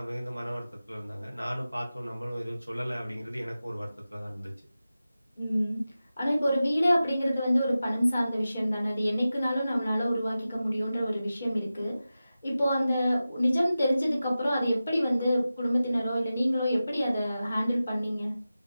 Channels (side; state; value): both; inverted; correlation -0.94